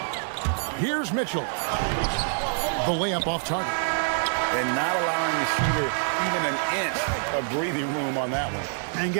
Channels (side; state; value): left; silent; digital silence